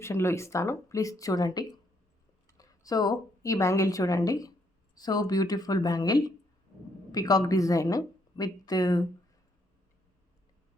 ఇస్తాను, ప్లీజ్ చూడండి. సో ఈ బ్యాంగిల్ చూడండి, so beautiful bangle, peacock design with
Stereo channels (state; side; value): normal; both; correlation 0.72